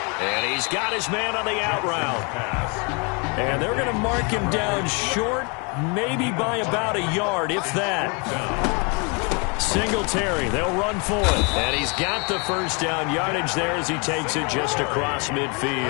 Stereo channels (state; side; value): quieter; right; 33.1 dB